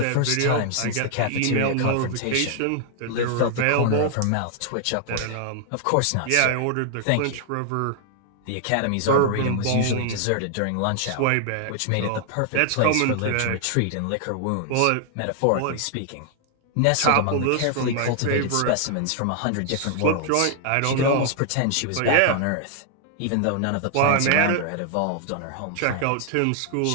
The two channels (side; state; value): both; different; correlation 0.00